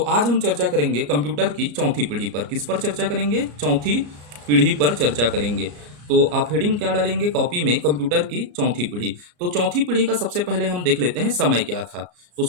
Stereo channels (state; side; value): late; left; 34 ms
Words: हम चर्चा करेंगे कंप्यूटर की चौथी पीढ़ी पर। किस पर चर्चा करेंगे? चौथी पीढ़ी पर चर्चा करेंगे। तो आप हेडिंग क्या डालेंगे कॉपी में? कंप्यूटर की चौथी पीढ़ी। तो चौथी पीढ़ी का सबसे पहले हम देख लेते हैं समय क्या था। तो